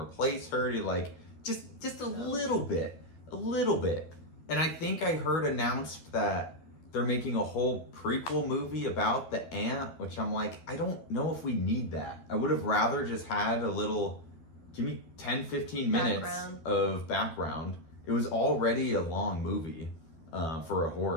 her? Just a little bit. And I think I heard announced that they're making a whole prequel movie about the aunt, which I'm like, I don't know if we need that. I would have rather just had a little, give me 10, 15 minutes of background. It was already a long movie for a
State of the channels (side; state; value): right; late; 12 ms